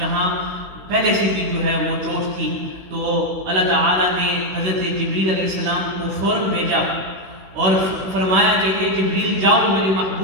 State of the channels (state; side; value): late; left; 16 ms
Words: پہلے سے بھی جو ہے وہ چوٹ تھی. تو اللہ تعالیٰ نے حضرت جبریل علیہ السلام کو فوراً بھیجا اور فرمایا کہ اے جبریل جاؤ میرے